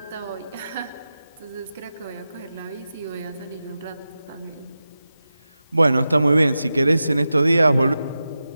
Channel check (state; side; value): inverted; both; correlation -0.92